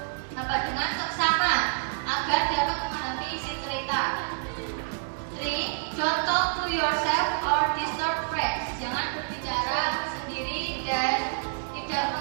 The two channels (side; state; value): left; silent; digital silence